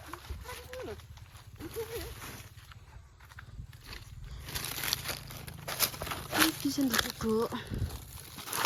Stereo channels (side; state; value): both; identical; correlation 1.00